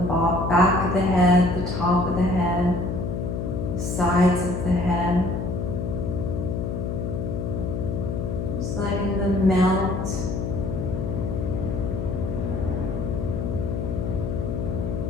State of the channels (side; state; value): left; noise; hum, 2 dB below the sound